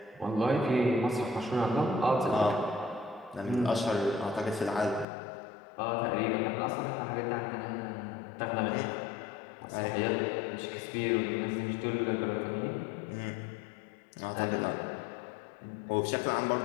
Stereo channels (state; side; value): drops out; right; at 5.1 s